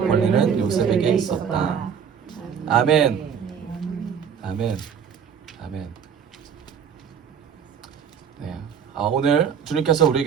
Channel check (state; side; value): quieter; left; 7.4 dB